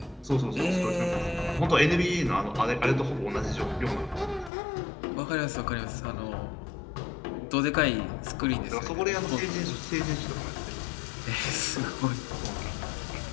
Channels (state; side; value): drops out; right; at 4.5 s